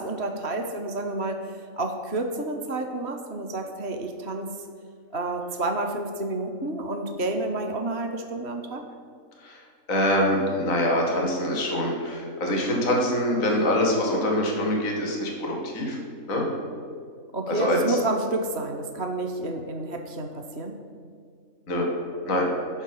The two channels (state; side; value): late; right; 3.1 ms